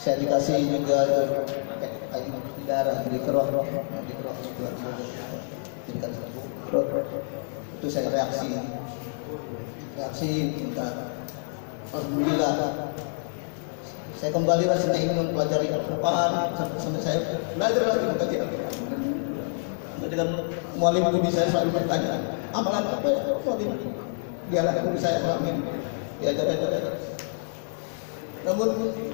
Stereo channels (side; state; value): right; silent; digital silence